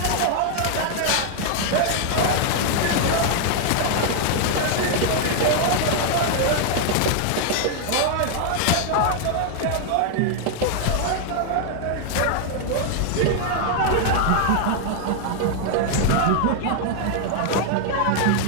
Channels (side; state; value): both; different; correlation 0.00